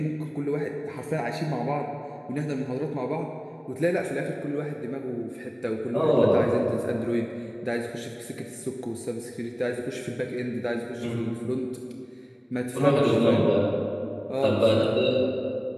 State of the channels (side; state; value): both; identical; correlation 1.00